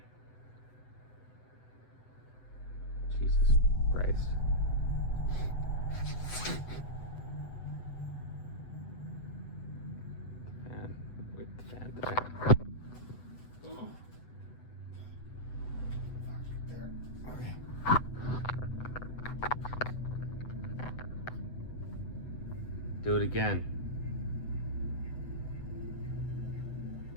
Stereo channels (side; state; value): right; late; 8.0 ms